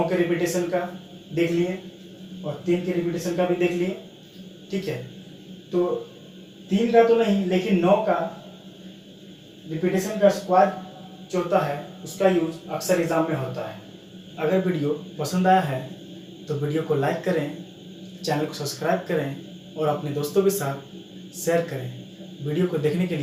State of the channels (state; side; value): identical; both; correlation 1.00